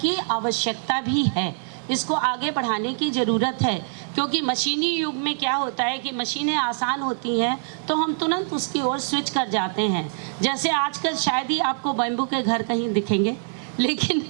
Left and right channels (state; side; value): silent; left; digital silence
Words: आवश्यकता भी है, इसको आगे बढ़ाने की ज़रूरत है, क्योंकि मशीनी युग में क्या होता है कि मशीनें आसान होती हैं तो हम तुरंत उसकी ओर स्विच कर जाते हैं। जैसे आजकल शायद ही आपको बैम्बू के घर कहीं दिखेंगे, लेकिन